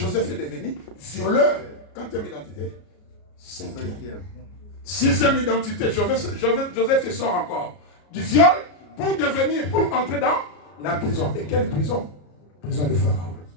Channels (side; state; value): right; late; 33 ms